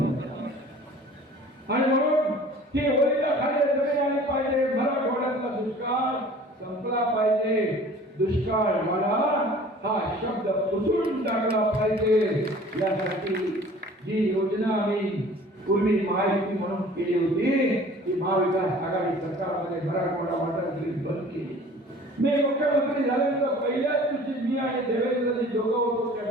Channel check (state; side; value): normal; both; correlation 0.47